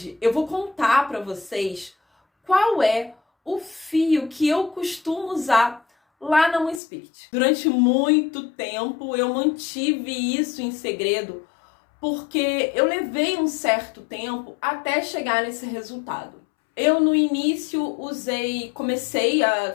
eu vou contar para vocês qual é o fio que eu costumo usar lá na Moon Spirit. Durante muito tempo, eu mantive isso em segredo, porque eu levei um certo tempo até chegar nesse resultado. Eu, no início, comecei a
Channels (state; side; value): drops out; right; at 6.8 s